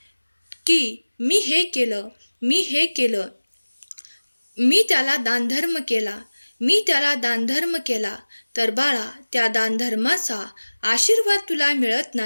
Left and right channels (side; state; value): both; inverted; correlation -1.00